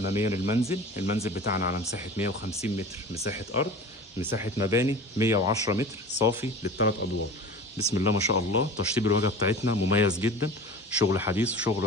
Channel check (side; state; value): both; normal; correlation 0.37